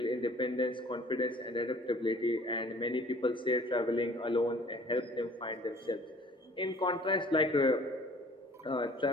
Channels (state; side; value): normal; both; correlation 0.52